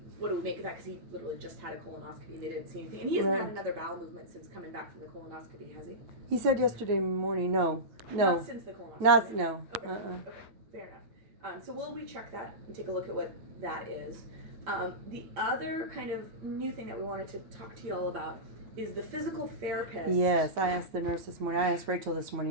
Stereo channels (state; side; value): late; left; 9.3 ms